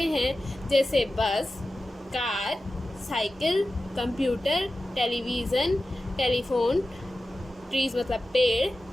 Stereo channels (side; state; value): both; normal; correlation 0.94